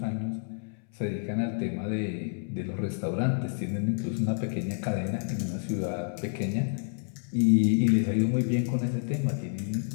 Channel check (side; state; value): right; silent; 59 dB below the other